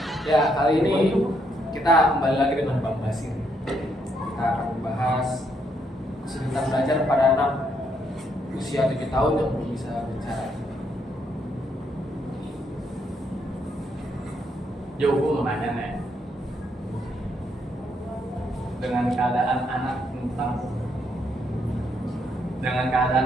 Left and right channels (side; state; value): both; normal; correlation 0.75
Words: Ya, kali ini kita kembali lagi dengan Bang Basir. Kita akan membahas kesulitan belajar pada anak usia 7 tahun yang belum bisa bicara. Yo, gue mau nanya nih, dengan keadaan anak